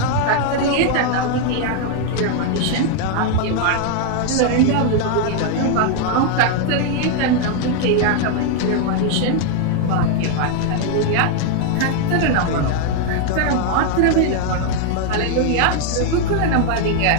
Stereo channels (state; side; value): different; both; correlation 0.00